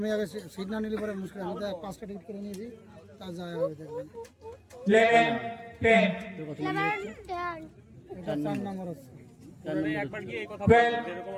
আগে সিট না নিলে পরে মুশকিল। আমি তো 5টা টিকিট করে নিয়েছি, তা যায় হবে দেখবেন। 11 10 তোর কত 11 এটা 4 নম্বর হচ্ছে। একবার গিয়ে এই কথা Well, বলো, যেরকম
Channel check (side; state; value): both; identical; correlation 1.00